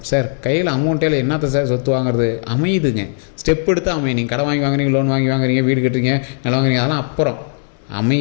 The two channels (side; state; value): right; silent; digital silence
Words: சார் கையில் அமௌண்ட்டில் என்னத்தை சார் சொத்து வாங்குறது, அமையுதுங்க. ஸ்டெப் எடுத்து அமையும். நீங்கள் கடன் வாங்கி வாங்குறீங்க, லோன் வாங்கி வாங்குறீங்க, வீடு கட்டுறீங்க, நிலம் வாங்குறீங்க, அதெல்லாம் அப்புறம்